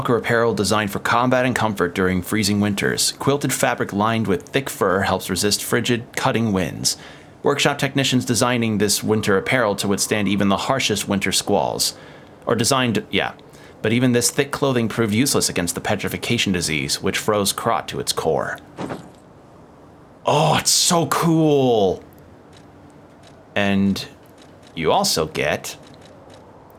apparel designed for combat and comfort during freezing winters. Quilted fabric lined with thick fur helps resist frigid, cutting winds. Workshop technicians designing this winter apparel to withstand even the harshest winter squalls. Or designed, yeah. But even this thick clothing proved useless against the petrification disease, which froze Krot to its core. Oh, it's so cool! And you also get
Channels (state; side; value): identical; both; correlation 1.00